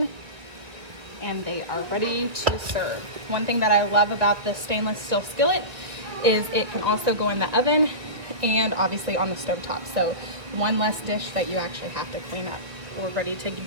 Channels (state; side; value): late; left; 1.7 ms